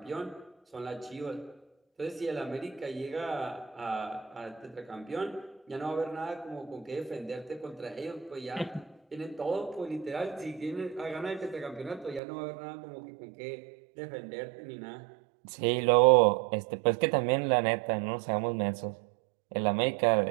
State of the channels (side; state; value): left; drops out; at 12.2 s